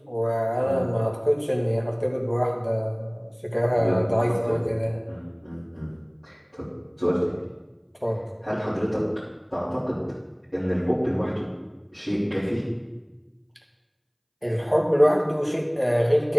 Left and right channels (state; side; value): identical; both; correlation 1.00